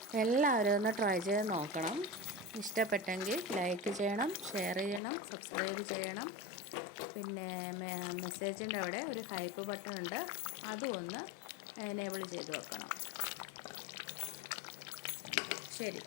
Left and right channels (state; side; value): drops out; right; at 5.0 s